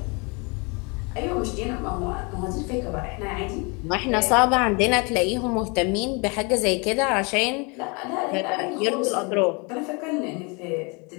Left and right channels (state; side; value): quieter; right; 30.7 dB